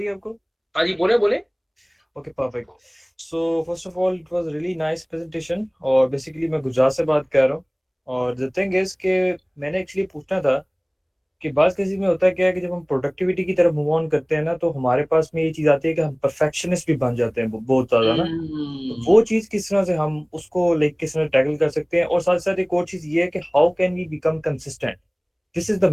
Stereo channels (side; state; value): both; identical; correlation 1.00